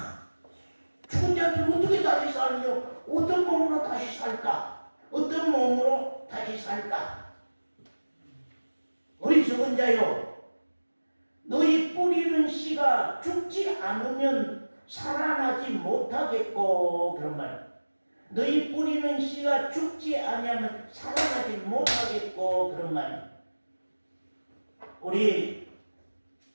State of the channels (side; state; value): both; inverted; correlation -1.00